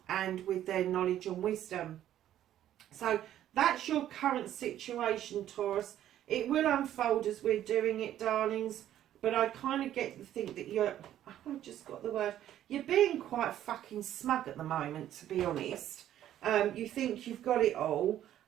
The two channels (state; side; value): quieter; left; 11.8 dB